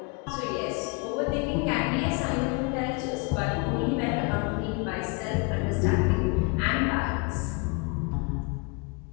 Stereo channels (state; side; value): quieter; right; 31.5 dB